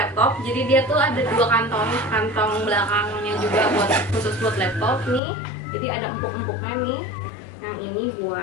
jadi dia tuh ada 2 kantong belakangnya juga khusus buat laptop nih. Jadi ada empuk-empuknya nih. Yang ini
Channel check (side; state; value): right; drops out; at 5.2 s